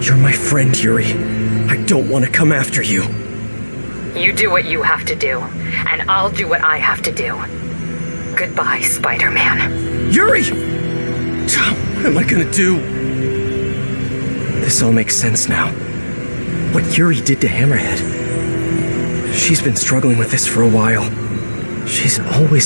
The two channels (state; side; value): inverted; both; correlation -1.00